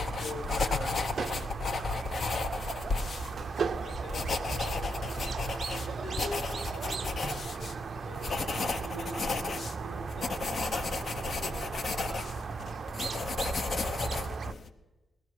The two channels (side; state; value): both; normal; correlation 0.79